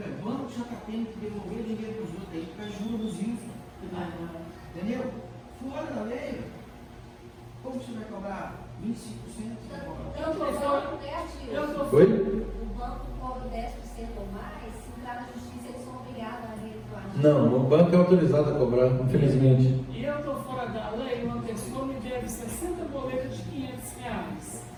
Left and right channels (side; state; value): both; identical; correlation 1.00